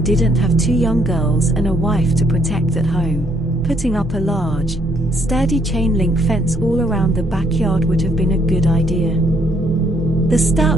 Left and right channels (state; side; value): normal; both; correlation 0.69